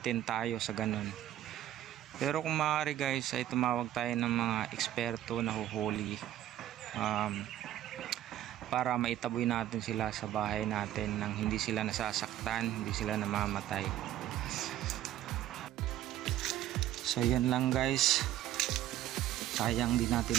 tayo sa ganun. Pero kung maaari guys, ay tumawag tayo ng mga eksperto na huhuli para maitaboy natin sila sa bahay natin nang hindi sila nasasaktan, hindi sila namamatay. So yun lang guys, sayang din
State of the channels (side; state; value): left; quieter; 12.7 dB